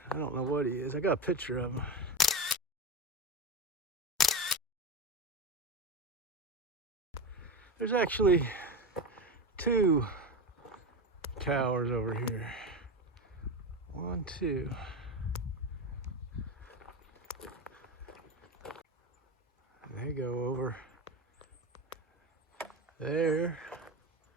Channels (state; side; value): normal; both; correlation 0.20